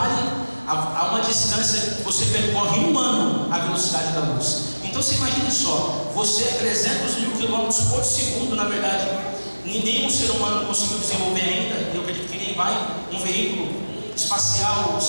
a uma distância que você percorre um ano a velocidade da luz. Então você imagine só, você é 300.000 quilômetros por segundo, na verdade, nenhum ser humano conseguiu desenvolver ainda, eu acredito que nem vai, um veículo espacial,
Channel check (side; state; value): both; inverted; correlation -1.00